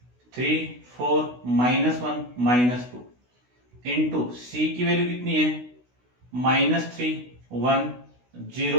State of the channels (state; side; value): late; left; 16 ms